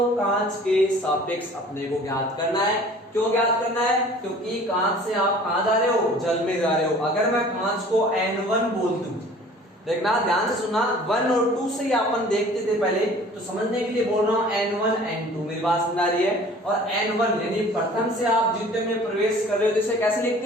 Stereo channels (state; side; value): normal; both; correlation 0.48